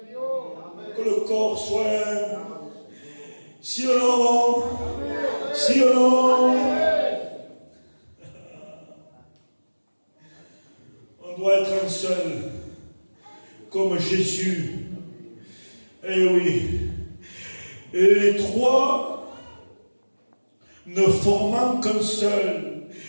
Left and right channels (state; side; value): inverted; both; correlation -1.00